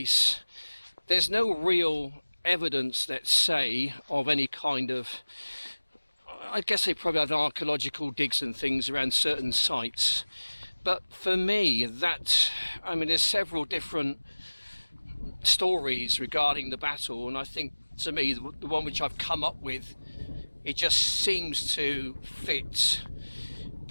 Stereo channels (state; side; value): inverted; both; correlation -1.00